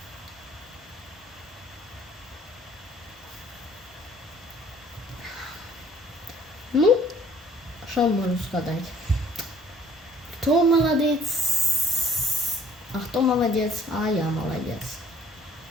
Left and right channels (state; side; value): normal; both; correlation 0.58